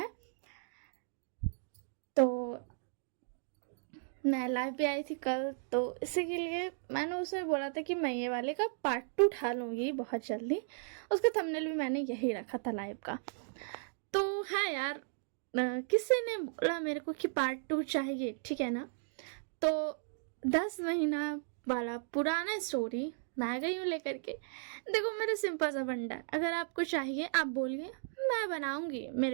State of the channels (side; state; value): left; silent; digital silence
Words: तो मैं लाइव भी आई थी कल, तो इसी के लिए मैंने उसे बोला था कि मैं ये वाले का पार्ट 2 उठा लूँगी बहुत जल्दी। उसका थंबनेल भी मैंने यही रखा था लाइव का। तो हाँ यार, किसी ने बोला मेरे को कि पार्ट 2 चाहिए, ठीक है ना। तो 10 महीना वाला पुराना स्टोरी मैं आ गई हूँ लेकर के। देखो, मेरा सिंपल सा फंडा है, अगर आपको चाहिए आप बोलिए, मैं बनाऊंगी।